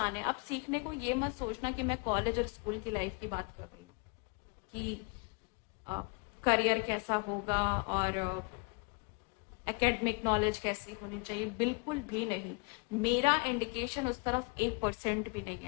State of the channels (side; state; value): right; quieter; 31.7 dB